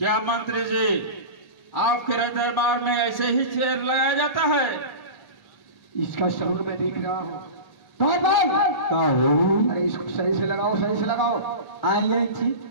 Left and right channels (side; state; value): right; late; 1.3 ms